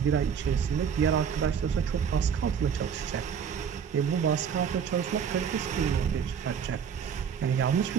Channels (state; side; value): quieter; left; 7.3 dB